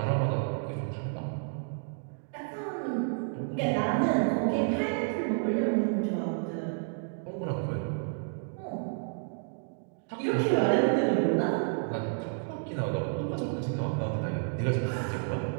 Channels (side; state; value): left; silent; digital silence